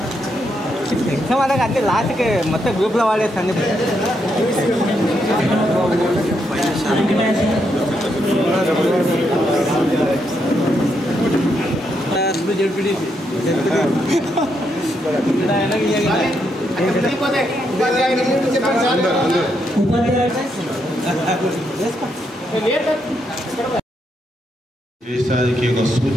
ఎగ్జామ్ అలాగే అన్ని లాస్ట్కి మొత్తం గ్రూప్లో వాడేస్తాను. దేశానికి ఒక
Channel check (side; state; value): both; normal; correlation 0.79